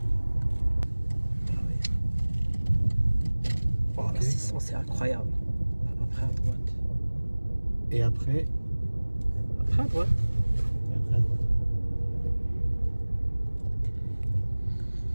Ah oui. Oh, la 600 c'est incroyable. Après à droite. Et après? Après à droite. Et après à droite.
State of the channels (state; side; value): inverted; both; correlation -1.00